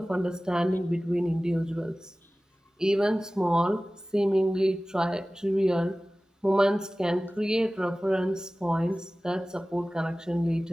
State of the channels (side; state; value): both; normal; correlation 0.97